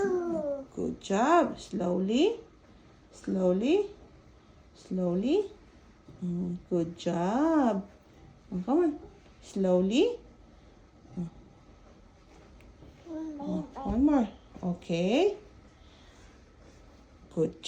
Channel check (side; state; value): both; identical; correlation 1.00